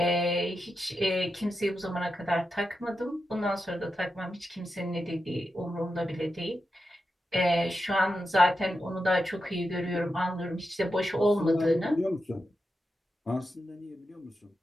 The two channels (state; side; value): normal; both; correlation 0.89